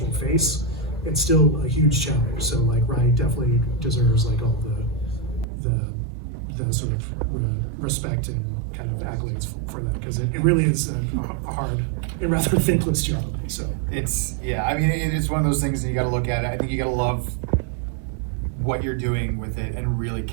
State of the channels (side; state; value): left; drops out; at 5.5 s